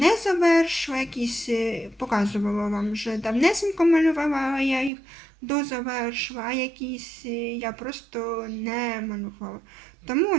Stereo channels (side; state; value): left; drops out; at 4.9 s